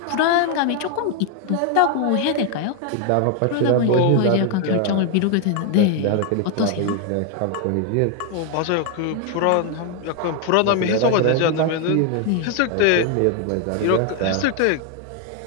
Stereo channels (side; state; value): both; different; correlation 0.01